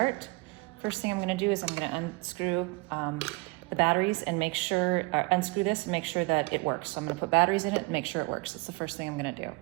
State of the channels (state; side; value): quieter; left; 26.5 dB